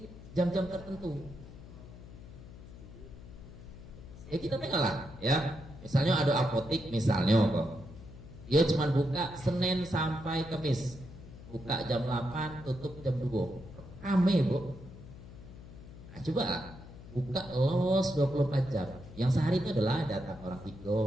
jam-jam tertentu. Ya kita tengoklah ya. Misalnya ada apotik misalnya kok. Dia cuma buka Senin sampai Kamis. Buka jam 8, tutup jam 2. Rame, Bu. Nah, coba lah, buka los 24 jam. Yang sehari itu adalah datang orang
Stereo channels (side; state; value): left; noise; hum, 16 dB below the sound